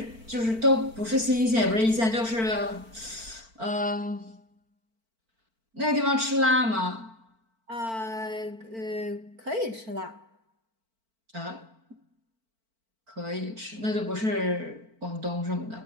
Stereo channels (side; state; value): left; late; 4.5 ms